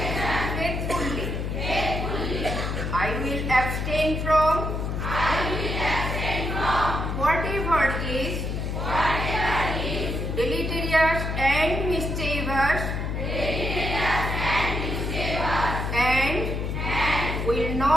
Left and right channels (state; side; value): noise; left; hum, 2 dB below the sound